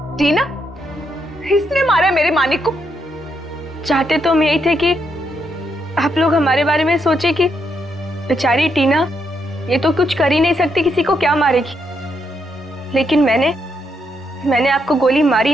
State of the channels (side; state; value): both; normal; correlation 0.78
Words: टीना, इसने मारा मेरे मानिक को? चाहते तो हम यही थे कि आप लोग हमारे बारे में सोचे कि बेचारी टीना ये तो कुछ कर ही नहीं सकती, किसी को क्या मारेगी। लेकिन मैंने आपको गोली मारी